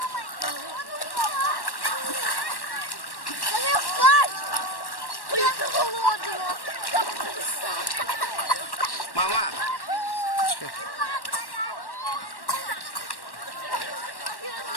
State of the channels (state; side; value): late; right; 1.1 ms